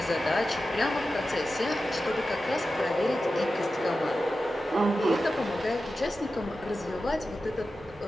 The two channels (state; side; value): normal; both; correlation 0.93